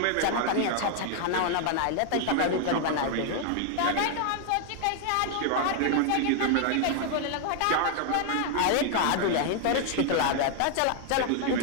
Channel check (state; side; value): different; both; correlation 0.00